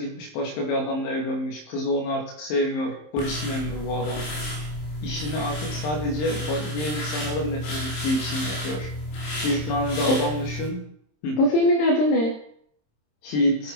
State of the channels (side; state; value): right; late; 27 ms